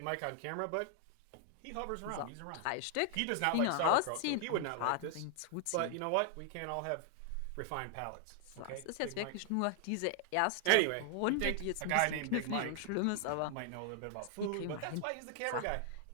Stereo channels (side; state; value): both; different; correlation 0.00